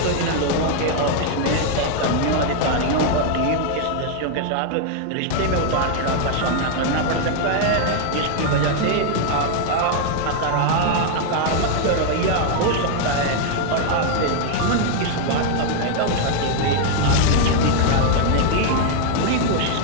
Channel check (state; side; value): different; both; correlation 0.00